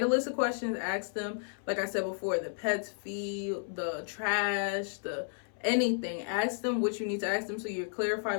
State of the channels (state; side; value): silent; right; 56 dB below the other